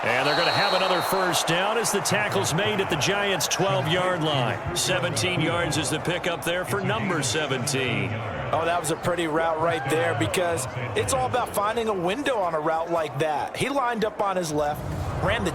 And they're going to have another first down as the tackle's made at the Giants' 12-yard line. 17 yards is the pickup there for number 17. Oh, that was a pretty route right there because it's all about finding a window on a route like that. He lined up on his left, ran the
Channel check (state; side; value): identical; both; correlation 1.00